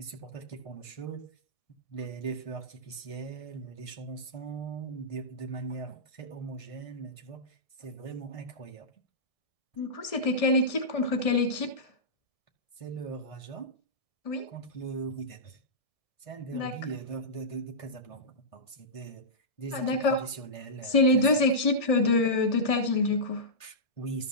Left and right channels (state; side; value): late; right; 1.6 ms